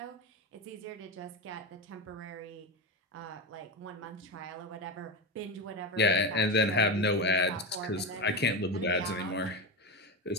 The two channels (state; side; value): normal; both; correlation 0.17